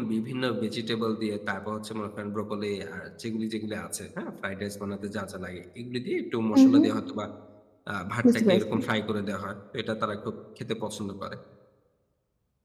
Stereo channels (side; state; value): both; identical; correlation 1.00